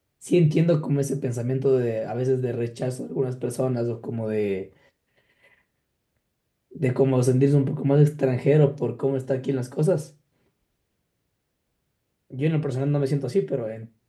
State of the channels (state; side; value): identical; both; correlation 1.00